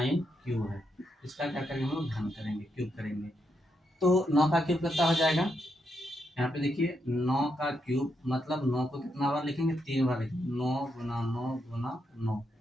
क्यूब है, इसका क्या करेंगे हम लोग घन करेंगे, क्यूब करेंगे। तो 9 का क्यूब कितना हो जाएगा, यहाँ पे देखिए 9 का क्यूब मतलब 9 को कितना बार लिखेंगे 3 बार लिखेंगे, 9 गुना 9 गुना 9।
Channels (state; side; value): normal; both; correlation 0.81